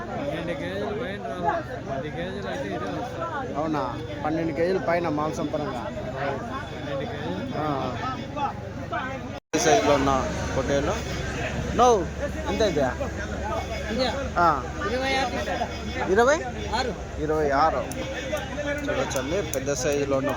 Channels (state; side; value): identical; both; correlation 1.00